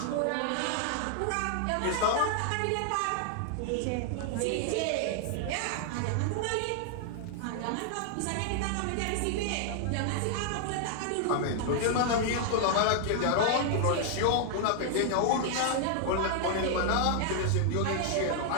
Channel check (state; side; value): different; both; correlation 0.00